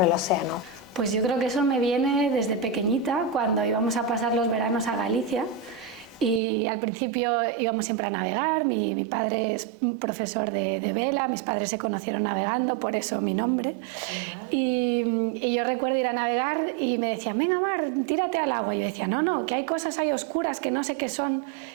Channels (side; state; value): left; drops out; at 6.4 s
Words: el océano? Pues yo creo que eso me viene desde pequeñita, cuando íbamos a pasar los veranos a Galicia. Y al principio íbamos siempre a navegar. Mi padre es profesor de vela, mis padres se conocieron navegando, por eso mi nombre. Y yo recuerdo ir a navegar y me decían: venga Mar, tírate al agua. Y yo decía: no, que hay cosas ahí oscuras que no sé qué son